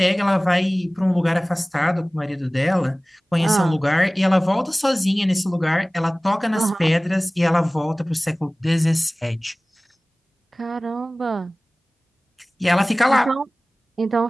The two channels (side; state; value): both; normal; correlation 0.98